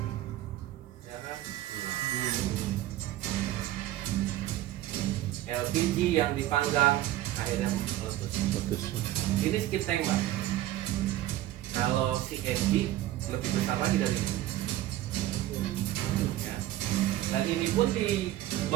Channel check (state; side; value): quieter; left; 14.7 dB